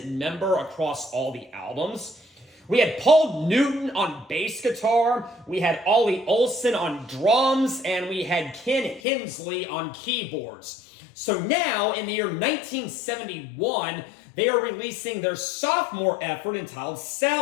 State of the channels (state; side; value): drops out; right; at 9.0 s